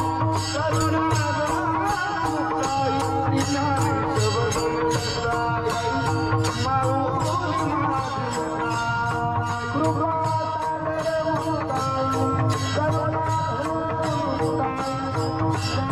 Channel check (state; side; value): identical; both; correlation 1.00